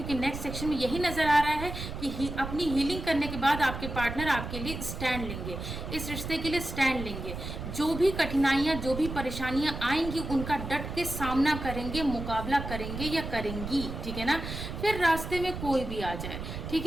नेक्स्ट सेक्शन में यही नज़र आ रहा है कि अपनी हीलिंग करने के बाद आपके पार्टनर आपके लिए स्टैंड लेंगे, इस रिश्ते के लिए स्टैंड लेंगे। जो भी कठिनाइयाँ, जो भी परेशानियाँ आएंगी उनका डट के सामना करेंगे, मुकाबला करेंगे या करेंगी, ठीक है ना। फिर रास्ते में कोई भी आ जाए, ठीक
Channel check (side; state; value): right; noise; rumble, 7 dB below the sound